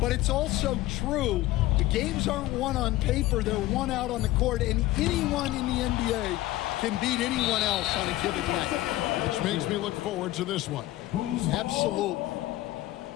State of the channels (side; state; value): right; quieter; 16.5 dB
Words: it's also true. The games aren't won on paper, they're won out on the court, and anyone in the NBA can beat anyone else on a given night. Which makes me look forward to this one. Absolutely.